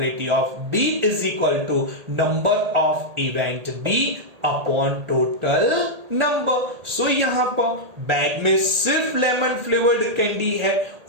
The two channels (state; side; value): late; left; 1.8 ms